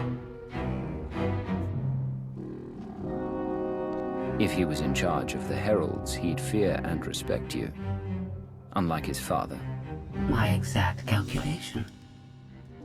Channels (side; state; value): both; identical; correlation 1.00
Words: If he was in charge of the Heralds, he'd fear and respect you. Unlike his father. My exact calculation.